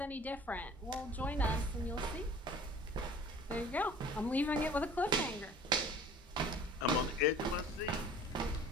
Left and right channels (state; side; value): normal; both; correlation 0.47